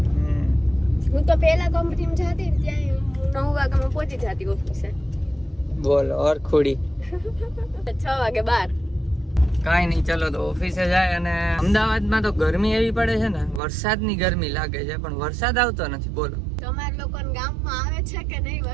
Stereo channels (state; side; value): drops out; left; at 13.6 s